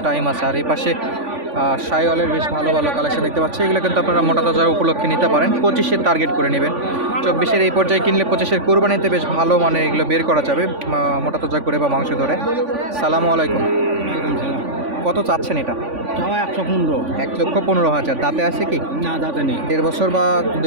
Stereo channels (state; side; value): late; left; 3.5 ms